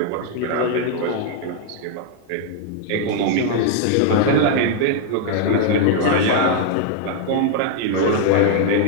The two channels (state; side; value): different; both; correlation 0.00